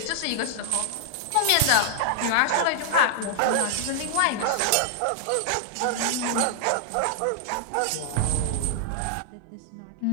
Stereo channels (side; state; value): both; different; correlation -0.01